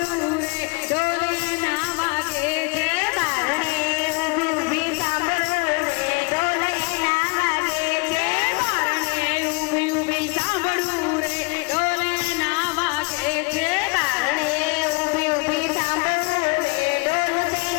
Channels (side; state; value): right; quieter; 29.9 dB